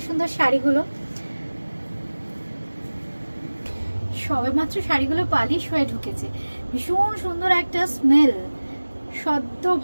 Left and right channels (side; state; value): both; inverted; correlation -1.00